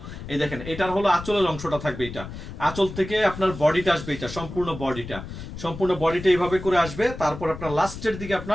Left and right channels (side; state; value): left; noise; rumble, 11 dB below the sound